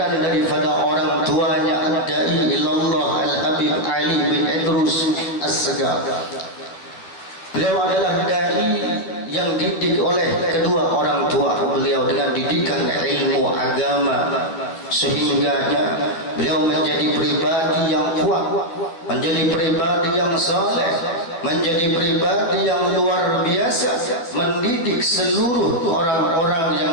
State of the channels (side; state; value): right; late; 12 ms